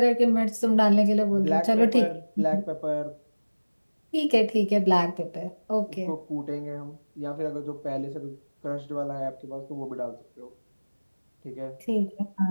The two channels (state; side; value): inverted; both; correlation -1.00